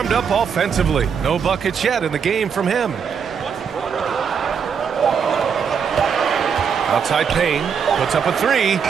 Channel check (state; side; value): quieter; left; 6.8 dB